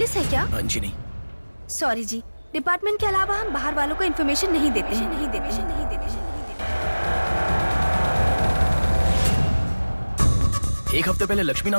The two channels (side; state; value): both; inverted; correlation -1.00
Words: है क्या? जी नहीं। सॉरी जी, डिपार्टमेंट के अलावा हम बाहर वालों को इन्फॉर्मेशन नहीं देते हैं। एक हफ्ते पहले लक्ष्मी